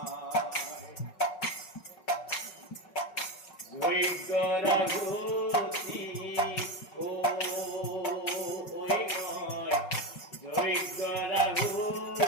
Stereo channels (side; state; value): right; late; 5.4 ms